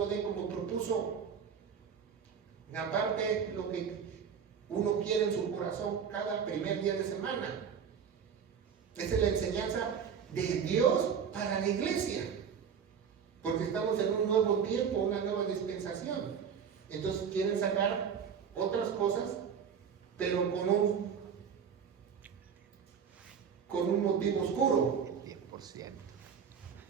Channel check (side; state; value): left; quieter; 7.2 dB